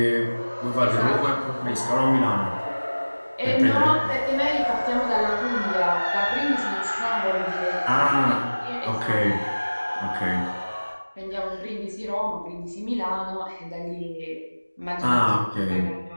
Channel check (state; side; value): inverted; both; correlation -1.00